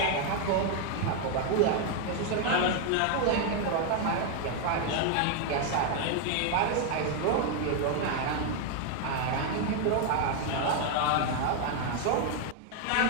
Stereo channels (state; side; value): different; both; correlation 0.01